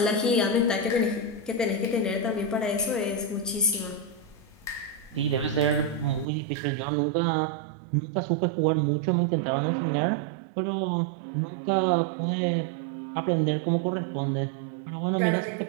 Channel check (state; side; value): drops out; left; at 6.2 s